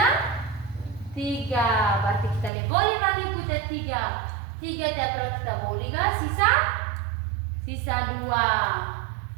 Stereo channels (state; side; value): drops out; left; at 2.5 s